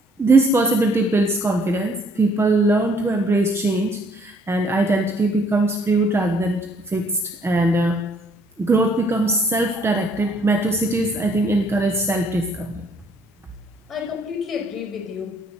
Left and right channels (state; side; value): normal; both; correlation 0.64